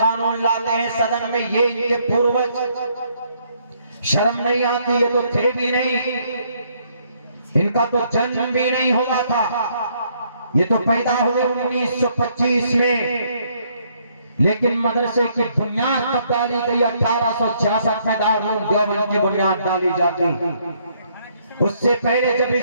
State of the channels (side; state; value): both; inverted; correlation -0.69